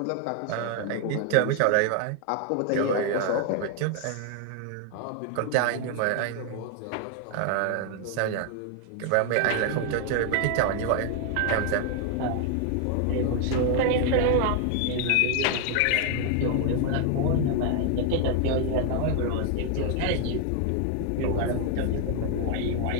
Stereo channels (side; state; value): both; different; correlation 0.00